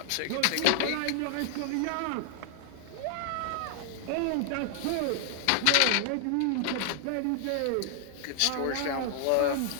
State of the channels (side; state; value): both; different; correlation 0.00